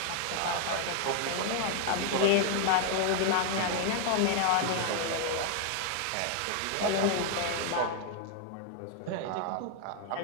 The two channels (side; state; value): both; different; correlation 0.00